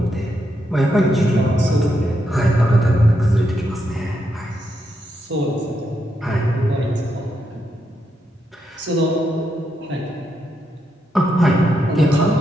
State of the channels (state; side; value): normal; both; correlation 0.81